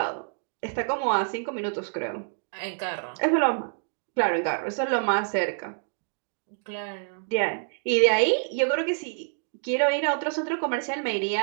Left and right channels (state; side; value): silent; left; digital silence